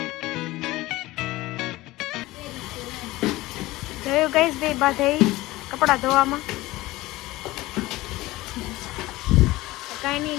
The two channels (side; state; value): right; quieter; 18.8 dB